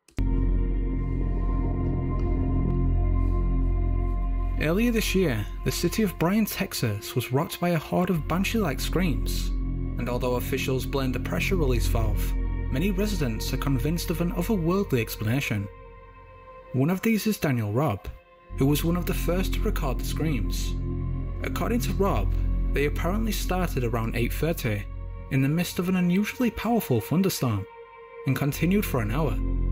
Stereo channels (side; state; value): both; identical; correlation 1.00